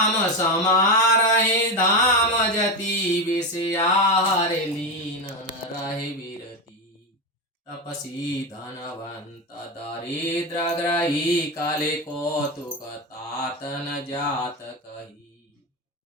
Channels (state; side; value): normal; both; correlation 0.14